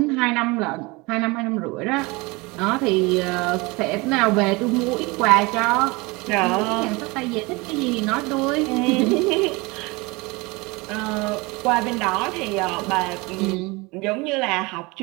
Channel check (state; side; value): quieter; left; 25.0 dB